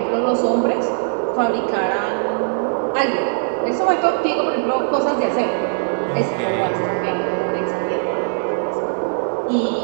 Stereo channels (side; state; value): left; silent; 60 dB below the other